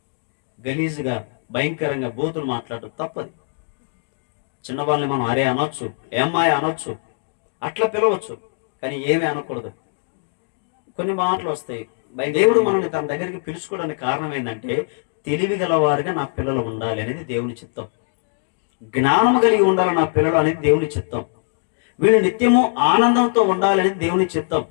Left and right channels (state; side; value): silent; right; digital silence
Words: గలీజుగా భయంకరంగా బూతులు మాట్లాడటం తప్పది. చిన్నవాళ్ళని మనం అరే అనొచ్చు, ఏమ్మాయి అనొచ్చు, అట్లా పిలవచ్చు. కానీ ఏమీ అనకూడదు. కొన్ని మాటలు వస్తాయి. దేవుడు మనల్ని తన దగ్గరికి పిలుచుకోవడానికి కారణం ఏంటంటే తెలివి గలవారుగా నా పిల్లలు ఉండాలి అనేది దేవుని చిత్తం. జ్ఞానము కలిగి ఉండాలి నా పిల్లలు అనేది దేవుని చిత్తం. వీళ్ళు నిత్యము ఆనందంతో ఉండాలి అనేది దేవుని చిత్తం.